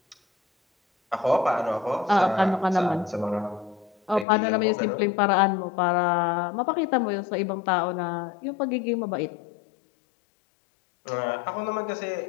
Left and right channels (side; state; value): right; drops out; at 4.2 s